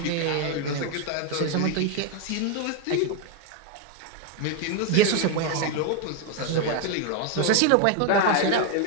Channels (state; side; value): different; both; correlation 0.01